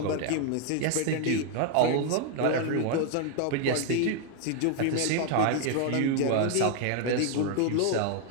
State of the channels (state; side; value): different; both; correlation 0.00